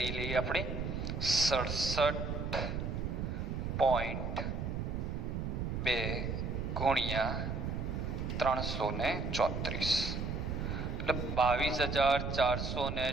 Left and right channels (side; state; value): right; noise; rumble, 2 dB below the sound